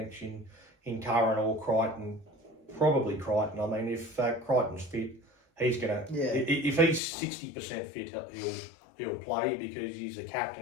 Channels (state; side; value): drops out; right; at 7.0 s